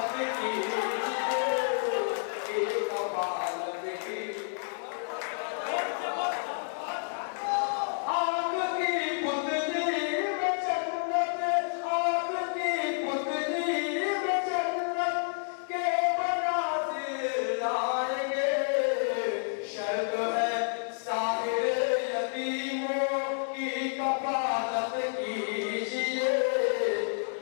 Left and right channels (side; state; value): right; silent; 58 dB below the other